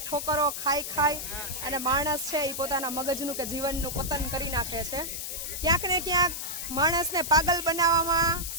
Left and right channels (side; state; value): left; noise; hiss, 5 dB below the sound